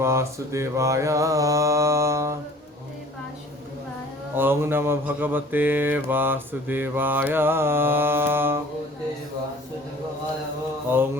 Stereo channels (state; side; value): normal; both; correlation 0.48